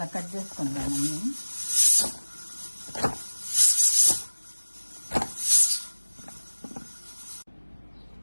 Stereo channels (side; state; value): both; inverted; correlation -1.00